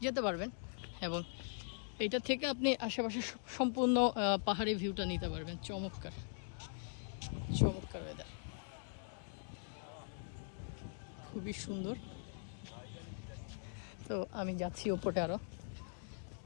যেতে পারবেন, এবং এটা থেকে আপনি আশেপাশে সম্পূর্ণ পাহাড়ি ভিউটা নিতে পারবেন। চমৎকার চমৎকার ওয়েদার, খুবই সুন্দর। তো আমি যাচ্ছি উপরে,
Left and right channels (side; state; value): right; silent; digital silence